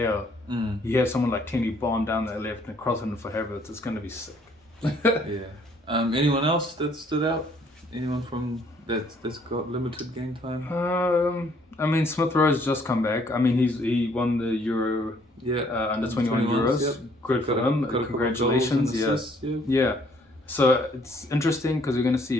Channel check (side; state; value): both; normal; correlation 0.64